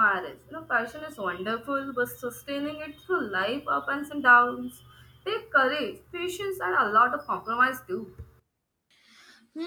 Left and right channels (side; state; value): both; identical; correlation 1.00